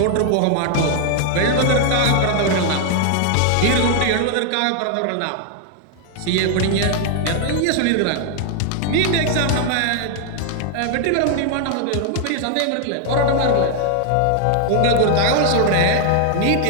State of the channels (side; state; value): both; different; correlation 0.00